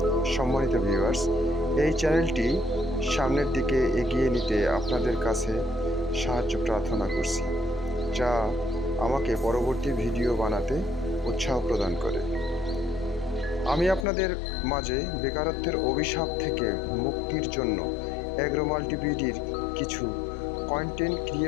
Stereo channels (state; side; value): drops out; right; at 14.1 s